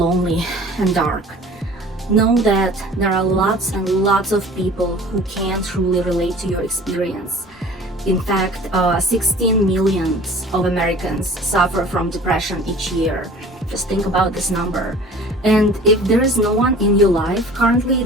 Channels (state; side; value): normal; both; correlation 0.45